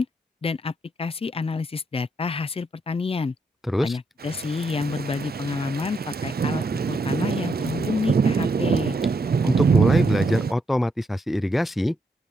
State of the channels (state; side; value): normal; both; correlation 0.78